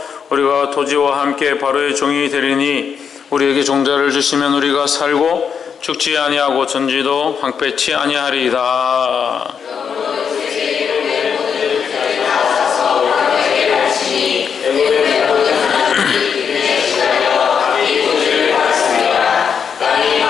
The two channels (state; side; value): quieter; right; 6.9 dB